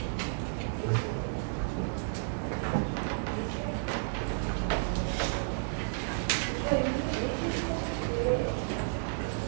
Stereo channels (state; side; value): silent; left; 56 dB below the other